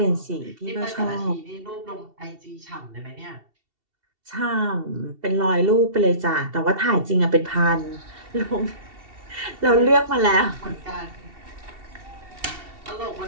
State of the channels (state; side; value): late; left; 2.7 ms